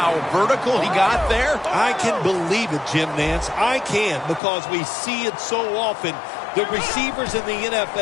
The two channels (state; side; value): drops out; right; at 4.4 s